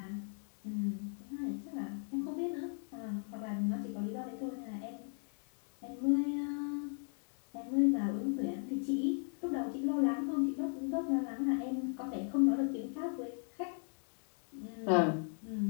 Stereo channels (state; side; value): silent; right; 53 dB below the other